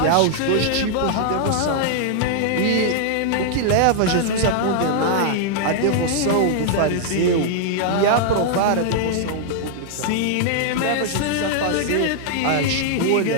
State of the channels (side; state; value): both; different; correlation -0.01